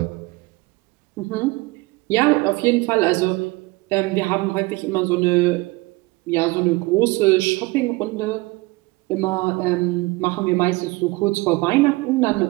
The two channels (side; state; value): left; quieter; 23.0 dB